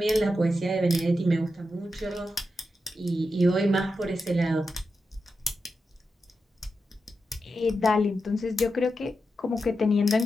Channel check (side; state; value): both; normal; correlation 0.88